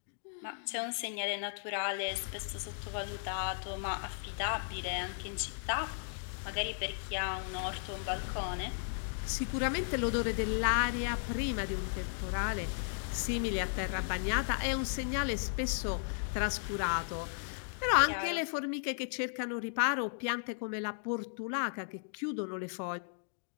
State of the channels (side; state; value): right; silent; digital silence